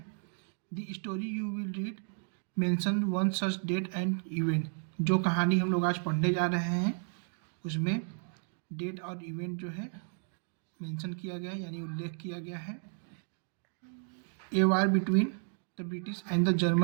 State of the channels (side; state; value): left; silent; 56 dB below the other